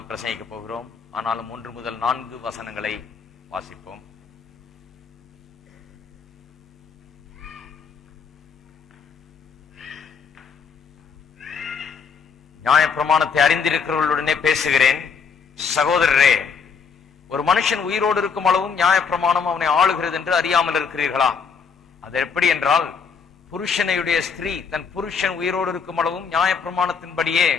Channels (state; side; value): quieter; right; 6.0 dB